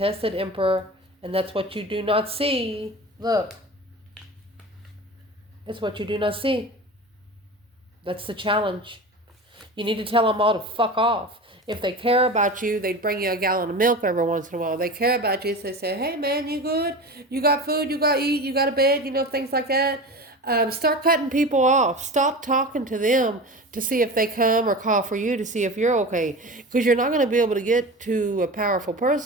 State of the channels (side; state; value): both; normal; correlation 0.31